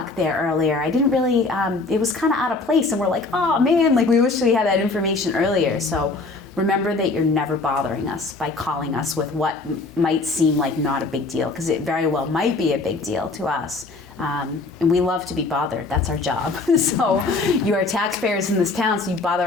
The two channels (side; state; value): right; quieter; 3.6 dB